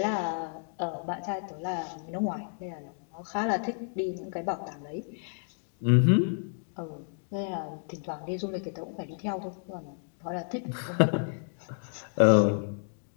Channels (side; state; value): right; silent; digital silence